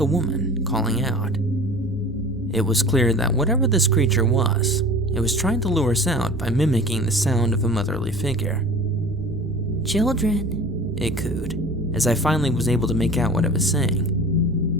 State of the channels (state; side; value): normal; both; correlation 0.41